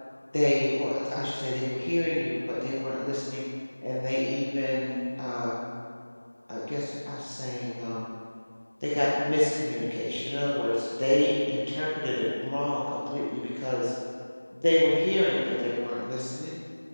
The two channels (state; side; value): inverted; both; correlation -1.00